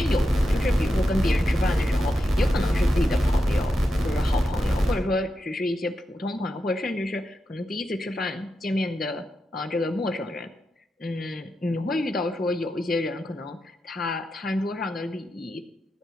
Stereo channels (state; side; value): normal; both; correlation 0.87